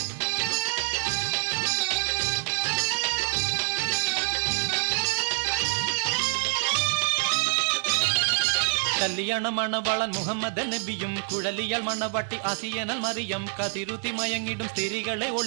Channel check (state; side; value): silent; left; 60 dB below the other